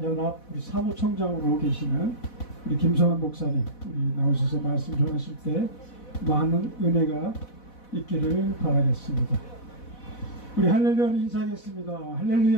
우리 사무총장으로 계시는 우리 김성환 목사님 우리 나오셔서 말씀 전하실 때 많은 은혜가 있기를 바라겠습니다. 우리 할렐루야를 인사하겠습니다.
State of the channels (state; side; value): late; right; 4.1 ms